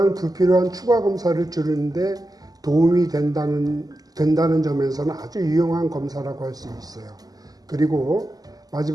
불필요한 추가 검사를 줄이는데 도움이 된다는 점에서는 아주 유용한 검사라고 할 수 있어요. 그리고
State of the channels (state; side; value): late; left; 0.18 ms